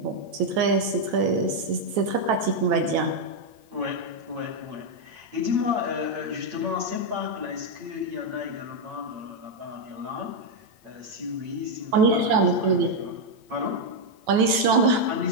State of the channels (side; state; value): left; late; 9.2 ms